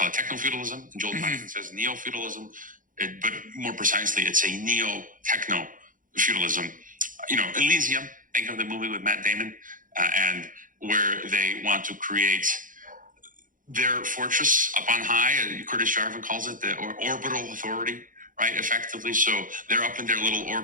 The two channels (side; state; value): left; late; 0.39 ms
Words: it? Techno-feudalism. And Joel Kotkins says neo-feudalism. But more precisely, it's a neo-techno-feudalism. Elysium, think of the movie with Matt Damon, and where they want to create their fortress up on high. Curtis Jarvin calls it the orbital authority, right? Effectively. So they're up in their little